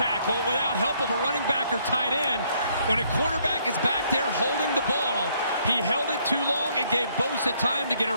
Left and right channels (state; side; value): inverted; both; correlation -0.68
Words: without help of a running back or tight end. When a quarterback is back there holding the ball, he held it too long. It gave Bosa time to get